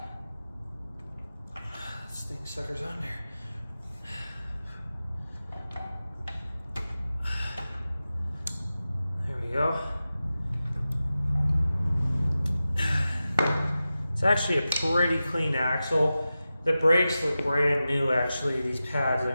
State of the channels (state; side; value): inverted; both; correlation -0.94